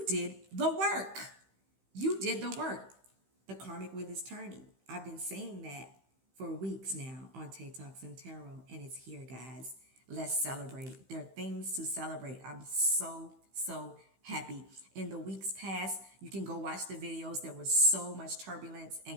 did the work. You did the work. The karmic wheel is turning. I've been saying that for weeks now on Tay Talks and Tarot, and it's here, guys. Let's celebrate. There are things to celebrate. I'm so happy. In the weeks past, you can go watch the videos. There was so much turbulence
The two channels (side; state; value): left; late; 15 ms